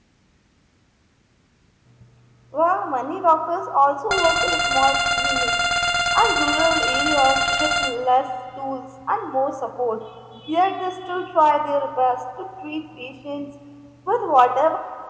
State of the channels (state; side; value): identical; both; correlation 1.00